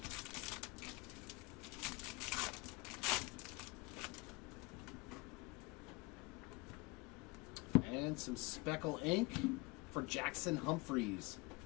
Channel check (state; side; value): quieter; right; 25.3 dB